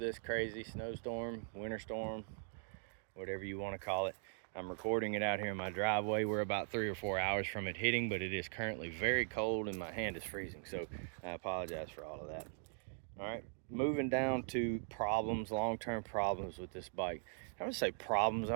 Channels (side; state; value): left; silent; 51 dB below the other